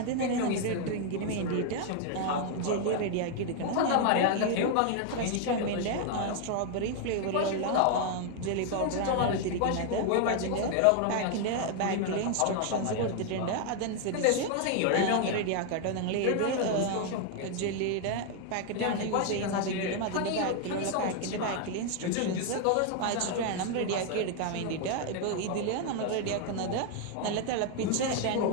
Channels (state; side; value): different; both; correlation 0.00